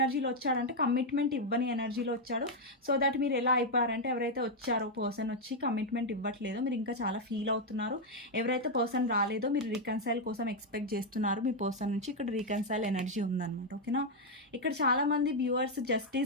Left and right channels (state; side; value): normal; both; correlation 0.01